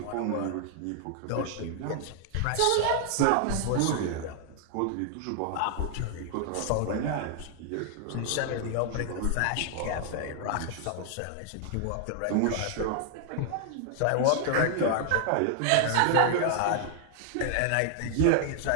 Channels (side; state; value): both; different; correlation 0.00